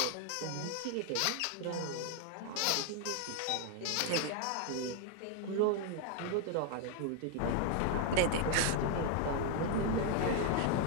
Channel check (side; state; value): both; different; correlation 0.01